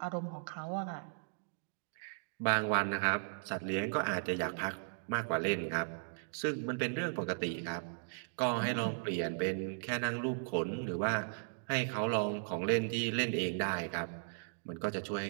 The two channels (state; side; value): silent; left; digital silence